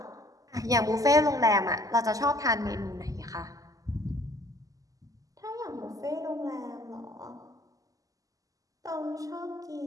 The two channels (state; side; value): late; left; 0.17 ms